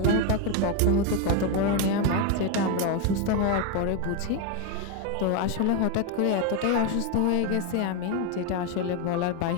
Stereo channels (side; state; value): both; different; correlation 0.02